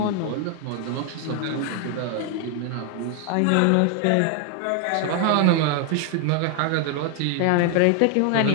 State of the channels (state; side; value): different; both; correlation 0.01